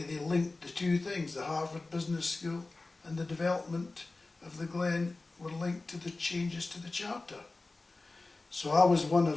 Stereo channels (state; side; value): quieter; right; 3.4 dB